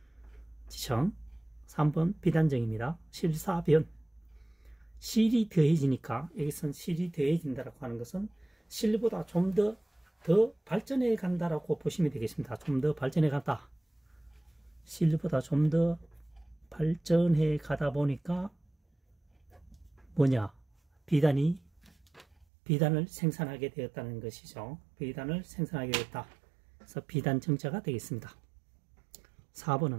3번 비단정입니다. 실사변. 실이 더해지니까, 여기서는 실이 더해진다라고 하는 것은 실보다 좀 더 발전해 간다라고 보시면 되겠습니다. 좀 더 발전해 간다. 실보다 좀 더 발전해 가다 보니까 뭐냐? 비단을 생산하게 되었다는 것이죠. 비단을 생산하게 되었다. 그래서 비단정자가 되겠습니다.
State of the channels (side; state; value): left; drops out; at 22.5 s